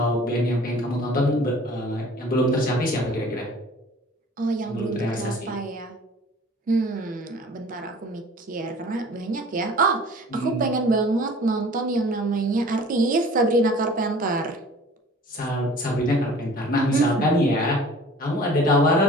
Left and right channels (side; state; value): both; normal; correlation 0.47